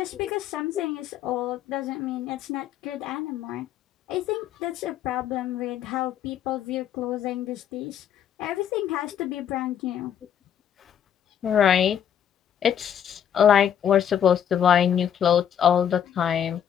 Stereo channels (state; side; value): quieter; right; 9.2 dB